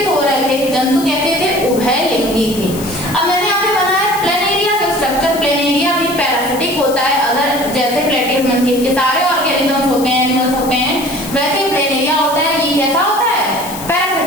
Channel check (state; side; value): noise; left; hiss, 12 dB below the sound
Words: हो रहे थे। जंतु कैसे थे, उभयलिंगी थे। अब मैंने यहाँ पे बनाया प्लेनेरिया का स्ट्रक्चर। प्लेनेरिया भी पैरासिटिक होता है, अगर जैसे प्लेटिहेल्मिन्थेस के सारे ऑर्गेनिजम्स होते हैं, एनिमल्स होते हैं, वैसे प्लेनेरिया होता है। ये कैसा होता है,